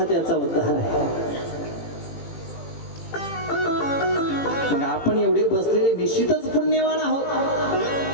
त्याचा उद्धार आहे. मग आपण एवढे बसलेले निश्चितच पुण्यवान आहोत.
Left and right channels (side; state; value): right; late; 18 ms